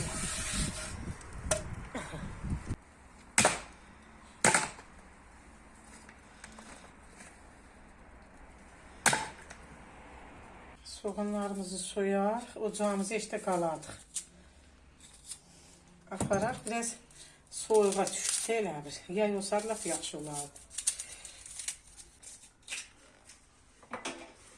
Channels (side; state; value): both; identical; correlation 1.00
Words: Soğanlarımızı soyar, ocağımızı işte qaladıq. Aparaq, biraz soyuğa düşsə elə bir. Yay olsa laf yaxşı olardı.